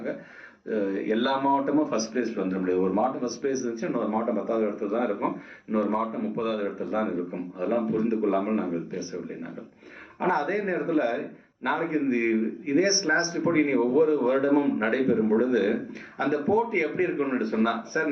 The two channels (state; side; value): identical; both; correlation 1.00